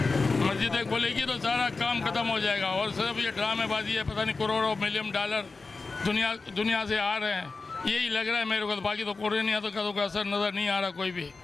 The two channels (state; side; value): quieter; right; 4.0 dB